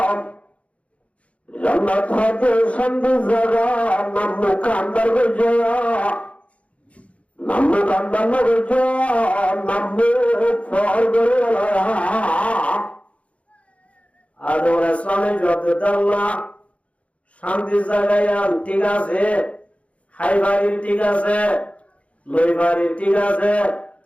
जन्नत है संधि जगह नाम मुकद्दर हो जाया नाम मुकद्दर हो जाया नाम फौर करे वाला यार আদম আলাইহিসসালামের যত আল্লাহ শান্তি জায়গায় ঠিক আছে খাইবারির ঠিক আছে লইবারির ঠিক আছে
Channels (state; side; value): late; right; 0.063 ms